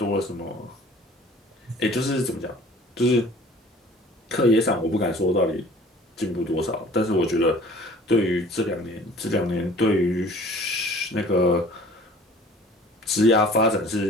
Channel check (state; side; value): normal; both; correlation 0.49